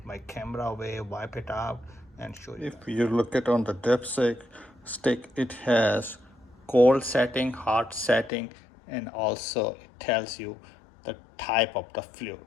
my camera away, wipe it out, and show you. If you look at on the dipstick stick, it has cold setting, hot setting, and also it tells you the type of the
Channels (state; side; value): drops out; right; at 8.3 s